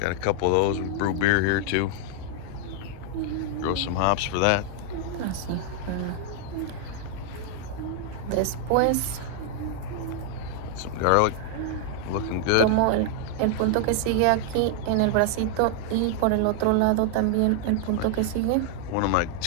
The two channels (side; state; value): both; different; correlation 0.00